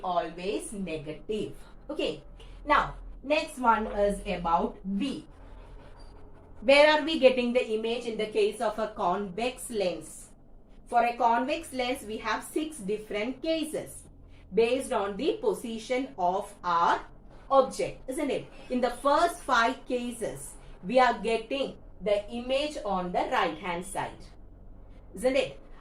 always negative. Okay. Now, next one is about V. Where are we getting the image in the case of a convex lens? For a convex lens, we have 6 different cases based on the position of our object, isn't it? In the first 5 cases, we are getting the image on the right hand side, isn't it?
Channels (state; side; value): identical; both; correlation 1.00